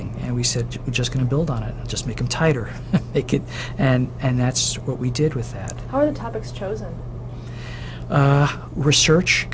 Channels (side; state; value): both; identical; correlation 1.00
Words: and we said we're just going to build on it, just make them tighter, make it, and that's what we did with that. How are the topics chosen? Research